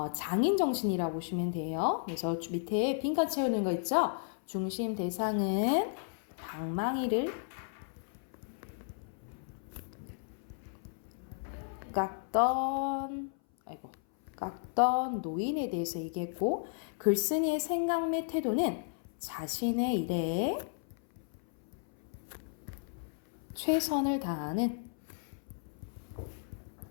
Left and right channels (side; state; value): right; silent; 55 dB below the other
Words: 장인 정신이라고 보시면 돼요. 그래서 밑에 빈칸 채우는 거 있죠. 중심 대상은 방망이를 깎던 노인에 대해서 얘기했고 글쓴이의 생각 및 태도는 자신의 일에 최선을 다하는